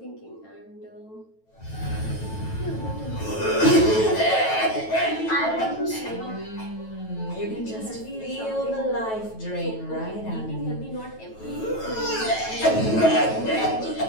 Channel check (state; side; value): late; right; 9.2 ms